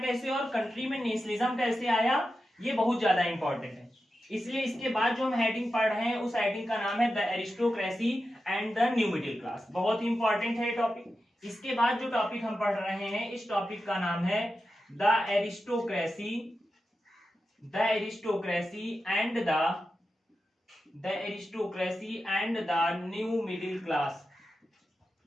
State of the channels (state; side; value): normal; both; correlation 0.90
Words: कैसे और कंट्री में नेशनलिज्म कैसे आया, ये बहुत ज्यादा इंपॉर्टेंट है। इसलिए इसके बाद जो हम हेडिंग पढ़ रहे हैं, उस हेडिंग का नाम है the aristocracy and the new middle class. बहुत ही इंपॉर्टेंट है टॉपिक। इसके बाद जो टॉपिक हम पढ़ रहे हैं, इस टॉपिक का नाम है the aristocracy and the new middle class.